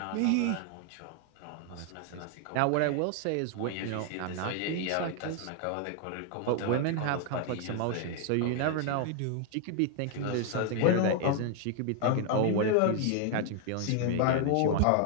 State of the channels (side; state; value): both; different; correlation 0.00